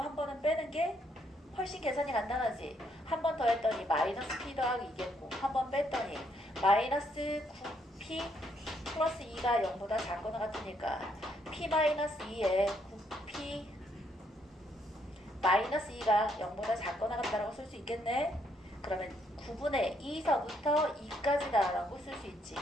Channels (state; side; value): normal; both; correlation 0.72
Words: 한 번은 빼는 게 훨씬 계산이 간단하지. 한 번 더 했더니 마이너스 p 더하기 2겠고 한 번 뺐더니 마이너스 9p 플러스 2가 0보다 작거나 같으니까 p 마이너스 2에 9p 마이너스 2가 0보다 작거나 같다라고 쓸 수 있겠네. 그러면 9분의 2서부터 2까지다 라고 쓸 수 있지.